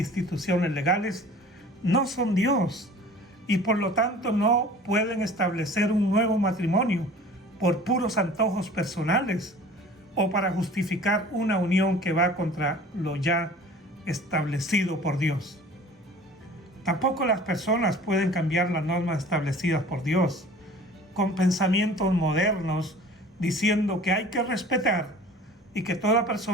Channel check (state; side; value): normal; both; correlation 0.45